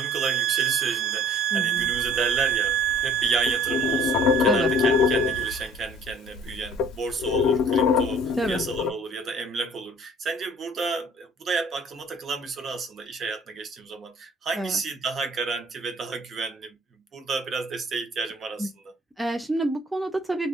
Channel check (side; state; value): both; normal; correlation 0.53